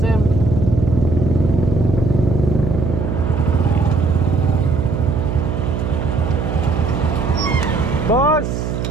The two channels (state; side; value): noise; right; hum, 3 dB below the sound